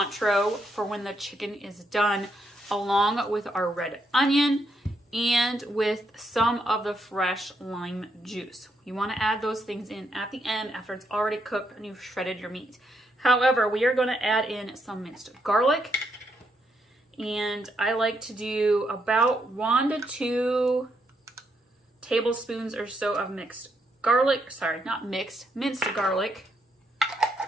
for when the chicken is done, along with our red onion and with some of the fresh lime juice. You want to add those things in at the end after it's already cooked and you've shredded your meat. However, we are going to add in some minced garlic. And I like to do about 1 to 2 tablespoons or so of minced garlic. Sorry, not mixed, minced garlic.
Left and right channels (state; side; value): normal; both; correlation 0.78